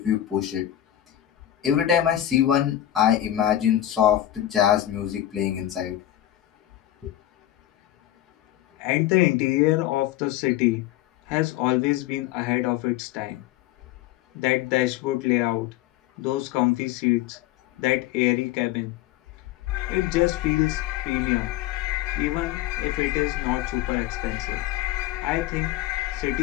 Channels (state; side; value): quieter; right; 13.2 dB